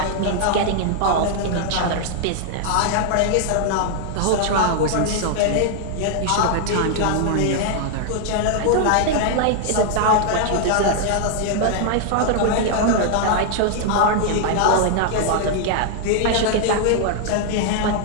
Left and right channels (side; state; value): both; different; correlation 0.00